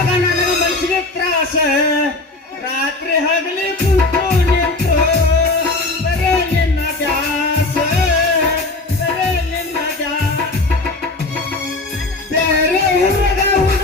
ನನಗ ಮನಸ್ಸಿಗೆ ತ್ರಾಸ ರಾತ್ರಿ ಹಗಲಿ ಕುಂತು ನಿಂತು ಬರೇ ನಿನ್ನ ದಾಸ ಬರೇ ನಿನ್ನ ಬೇರೆ ಹುಡುಗ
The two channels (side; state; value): right; quieter; 3.1 dB